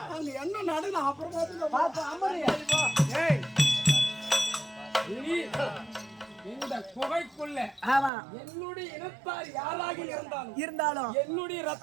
அங்க என்ன நடக்கும் அப்புறமா இந்த குகைக்குள்ள என்னுடைய இனத்தார் யாராக இருந்தாலும் என்னுடைய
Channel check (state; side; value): drops out; left; at 8.1 s